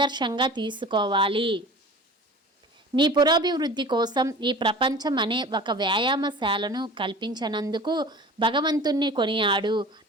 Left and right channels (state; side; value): normal; both; correlation 0.40